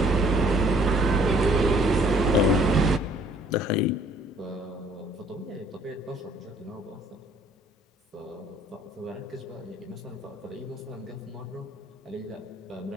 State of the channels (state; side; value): normal; both; correlation 0.60